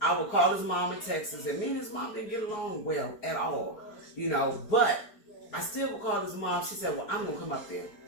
I would call his mom in Texas, and me and his mom didn't get along well at all. You know, but I still would call his mom. She said, well, I'm gonna come up there.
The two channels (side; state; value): right; late; 4.8 ms